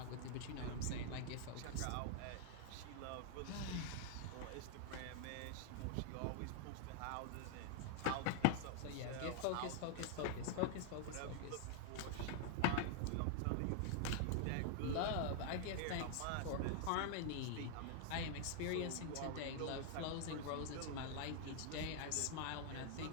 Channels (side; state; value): both; different; correlation 0.00